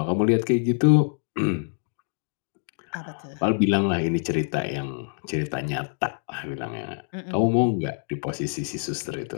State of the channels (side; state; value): right; silent; digital silence